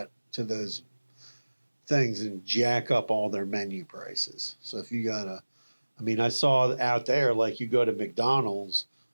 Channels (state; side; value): inverted; both; correlation -1.00